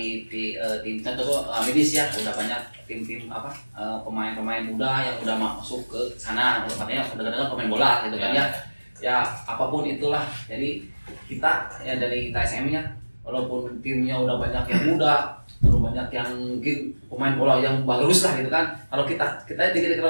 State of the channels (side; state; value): both; inverted; correlation -1.00